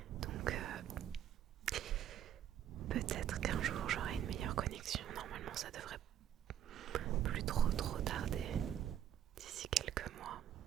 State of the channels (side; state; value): left; quieter; 10.4 dB